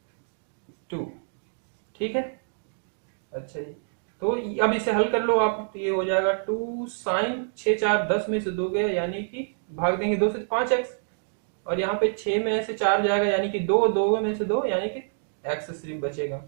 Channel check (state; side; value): silent; left; digital silence